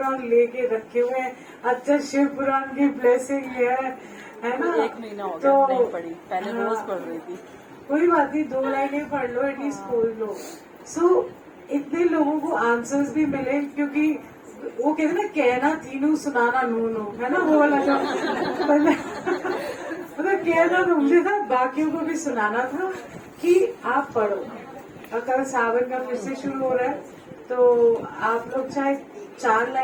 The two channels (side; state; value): both; identical; correlation 1.00